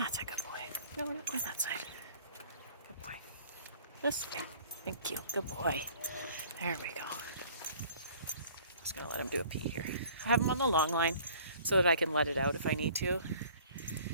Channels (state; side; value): inverted; both; correlation -0.52